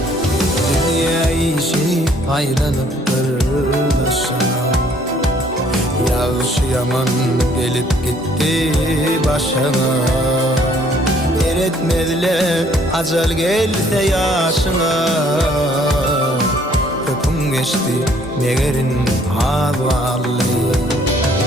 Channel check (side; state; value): both; normal; correlation 0.62